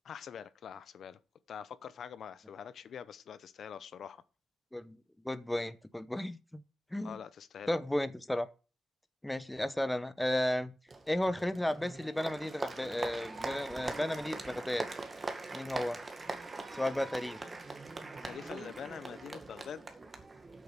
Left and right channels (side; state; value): both; normal; correlation 0.96